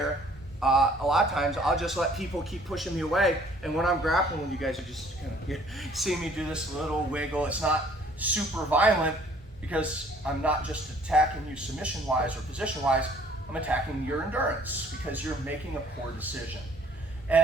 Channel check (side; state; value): both; normal; correlation 0.57